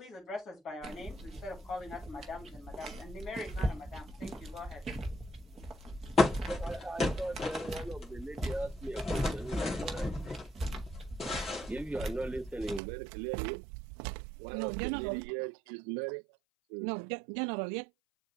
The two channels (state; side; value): drops out; left; at 12.8 s